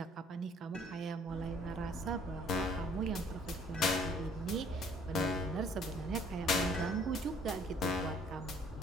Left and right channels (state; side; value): normal; both; correlation 0.58